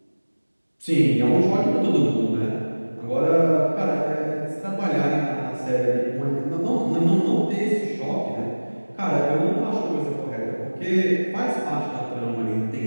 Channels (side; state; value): both; inverted; correlation -1.00